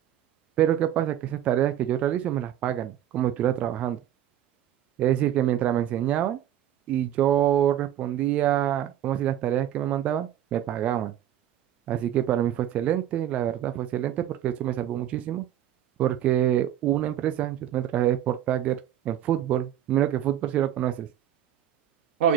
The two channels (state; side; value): quieter; left; 11.3 dB